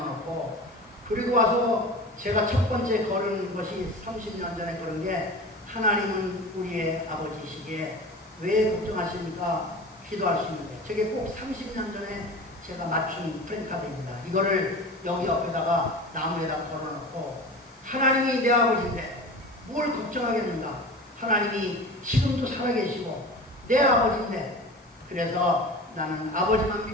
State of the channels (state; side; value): normal; both; correlation 0.34